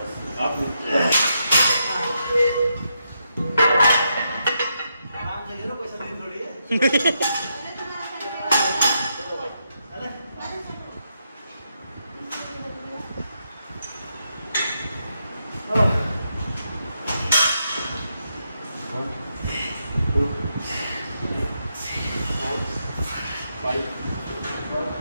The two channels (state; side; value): inverted; both; correlation -0.82